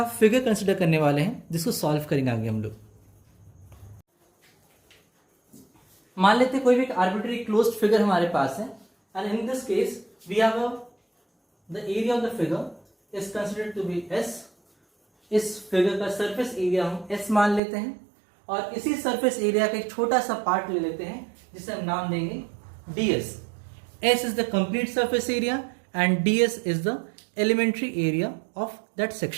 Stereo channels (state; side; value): drops out; left; at 17.6 s